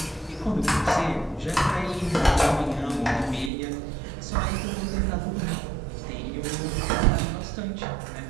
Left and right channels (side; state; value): left; drops out; at 3.5 s